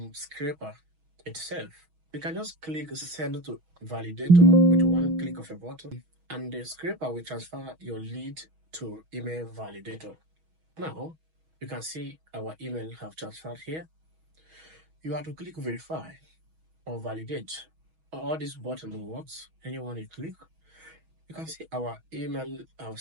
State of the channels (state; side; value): late; left; 6.2 ms